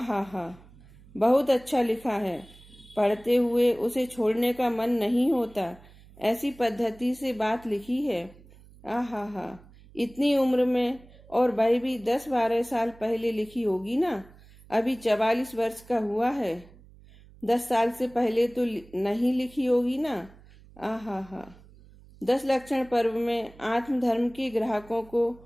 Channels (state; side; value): noise; right; hum, 23 dB below the sound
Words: हा, बहुत अच्छा लिखा है। पढ़ते हुए उसे छोड़ने का मन नहीं होता। ऐसी पद्धति से बात लिखी है। आहा हा, इतनी उम्र में, और वह भी 10-12 साल पहले लिखी होगी ना। अभी 44 वर्ष का हुआ है। 10 साल से पहले तो नहीं लिखी होगी ना। आहा हा, 10 लक्षण पर्व में आत्मधर्म के ग्राहकों को